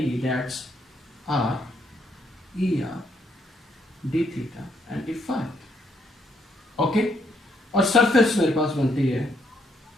that's R E R d theta and d phi। Okay, और सरफेस मेरे पास बनती है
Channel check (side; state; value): both; normal; correlation 0.74